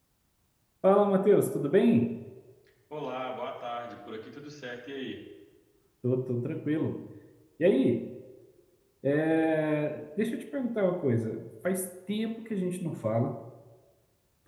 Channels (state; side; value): identical; both; correlation 1.00